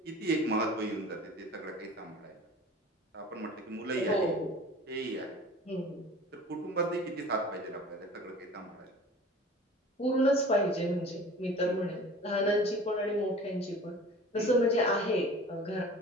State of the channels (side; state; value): both; normal; correlation 0.42